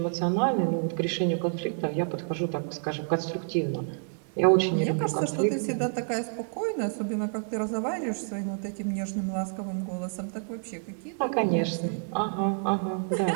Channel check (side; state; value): left; silent; digital silence